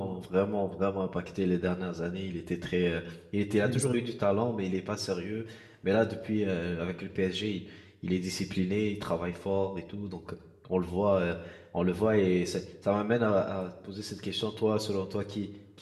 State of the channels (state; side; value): identical; both; correlation 1.00